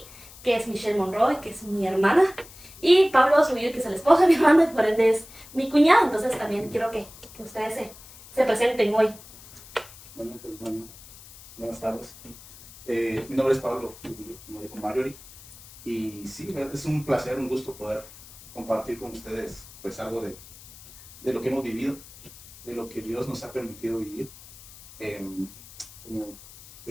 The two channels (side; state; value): left; noise; hiss, 19 dB below the sound